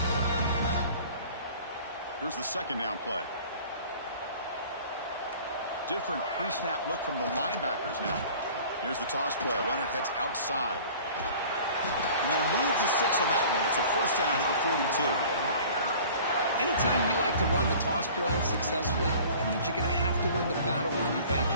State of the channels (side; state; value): both; inverted; correlation -0.46